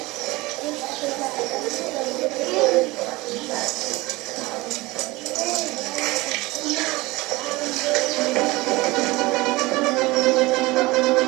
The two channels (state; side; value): quieter; left; 21.5 dB